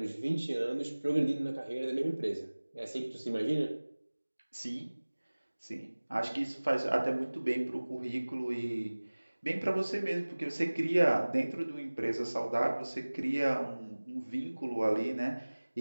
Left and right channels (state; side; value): inverted; both; correlation -1.00